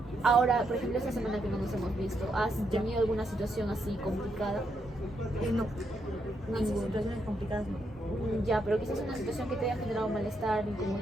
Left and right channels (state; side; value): normal; both; correlation 0.79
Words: Ahora, por ejemplo, esta semana que no nos hemos visto, ¿has tenido alguna situación así complicada? No, esas Ninguna. situaciones complicadas no. Ya, pero quizás una situación que te haya generado malestar,